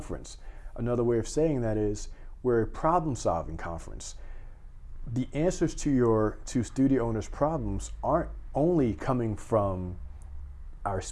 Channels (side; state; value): both; identical; correlation 1.00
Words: Another way of saying that is we're a problem-solving conference. The answers to studio owners' problems aren't only coming from our